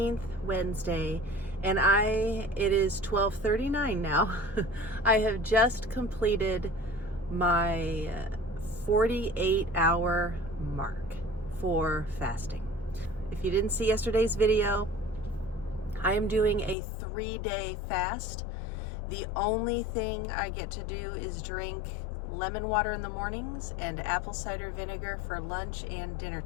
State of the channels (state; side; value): drops out; right; at 16.8 s